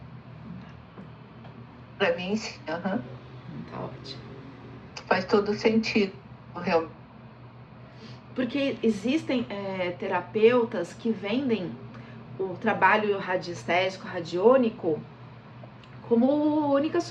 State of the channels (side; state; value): both; identical; correlation 1.00